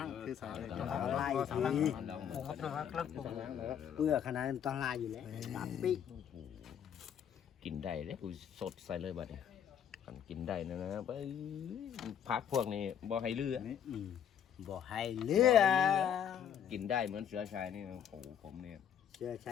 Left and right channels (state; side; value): quieter; right; 8.9 dB